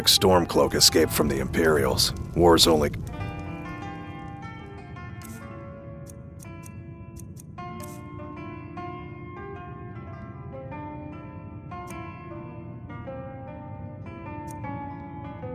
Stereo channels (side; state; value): both; identical; correlation 1.00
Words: Stormcloak escaped from the Imperials. War's only...